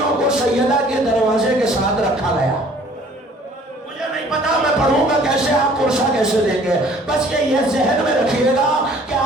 کو سیدہ کے دروازے کے ساتھ رکھا گیا. مجھے نہیں پتا میں پڑھوں گا کیسے، آپ پرسہ کیسے دیں گے. بس یہ ذہن میں رکھیے گا کہ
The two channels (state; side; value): normal; both; correlation 0.54